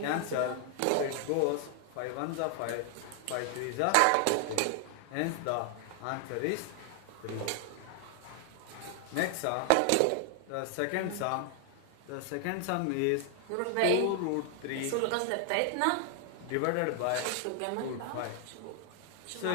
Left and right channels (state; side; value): different; both; correlation 0.00